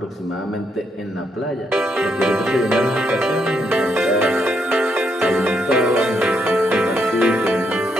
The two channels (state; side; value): normal; both; correlation 0.77